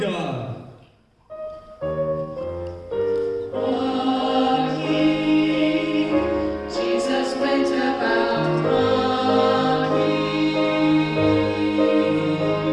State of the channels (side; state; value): both; identical; correlation 1.00